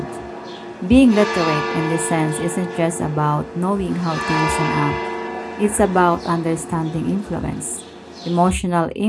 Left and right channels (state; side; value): identical; both; correlation 1.00